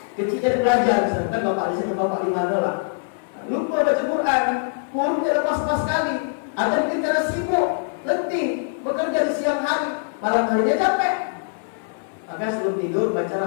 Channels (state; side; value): silent; right; 64 dB below the other